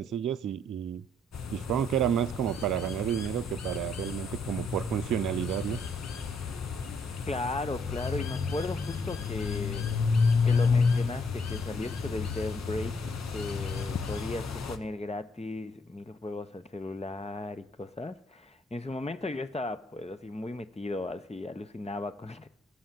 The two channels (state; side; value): normal; both; correlation 0.68